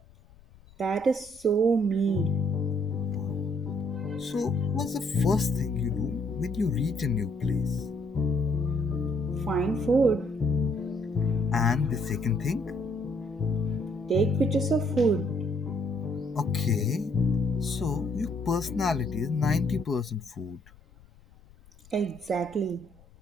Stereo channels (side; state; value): left; noise; rumble, 26 dB below the sound